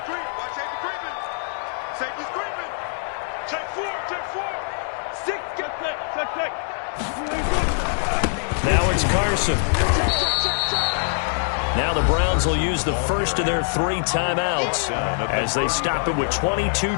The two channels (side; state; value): right; silent; digital silence